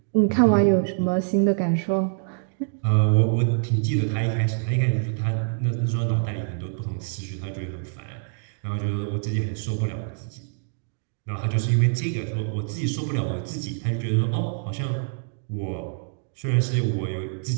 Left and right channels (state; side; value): silent; left; digital silence